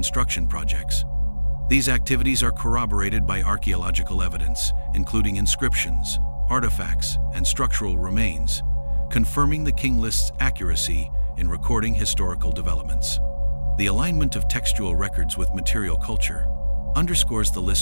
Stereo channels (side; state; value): both; inverted; correlation -1.00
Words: projects. These activities are corroborated by archaeological evidence, including inscriptions, artifacts, and structural remains, confirming the King List's accuracy in recording historical developments. The alignment of textual records with material culture underscores the